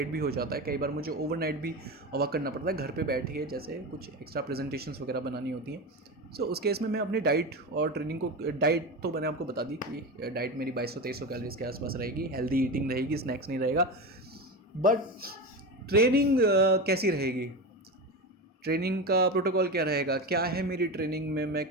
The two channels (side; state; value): both; normal; correlation 0.22